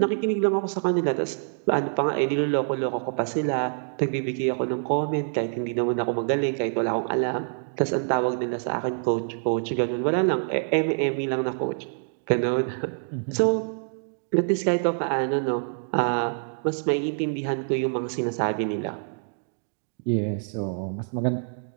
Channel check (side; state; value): left; silent; 61 dB below the other